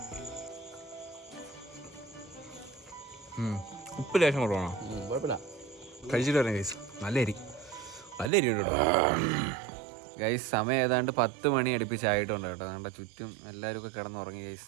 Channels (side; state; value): left; drops out; at 8.3 s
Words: ഉപ്പ് ലേശം കുറവാണോ? കുഴപ്പമില്ല. കഴിച്ചിട്ട് വരാം ഗൈസ്. നല്ല അരി കേട്ടോ ഗൈസ്. സമയം ഏതാണ്ട് 10 മണി അടുപ്പിച്ചായിട്ടുണ്ട് കേട്ടോ. നമ്മുടെ ചുറ്റും എല്ലാവരും ഒക്കെ കിടന്നുറങ്ങി ഗൈസ്.